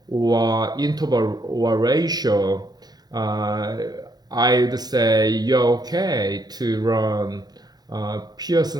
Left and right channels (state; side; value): late; left; 0.19 ms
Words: or interval or ratio, I would say you're okay to run